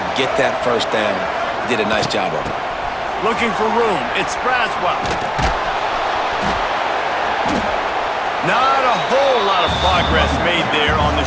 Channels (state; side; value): identical; both; correlation 1.00